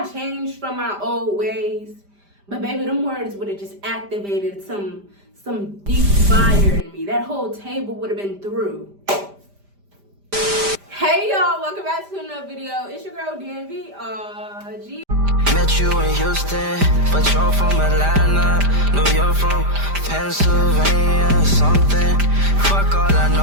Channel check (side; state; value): left; late; 5.0 ms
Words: changed from my old ways, but baby, them words would have just activated some deep fire in me. That whole table would have been through. Hey y'all, welcome back to another video. It's your girl DMV. Met you in Houston, but you're from Atlanta. No, you're from Pennsylvania or something. Fuck, all I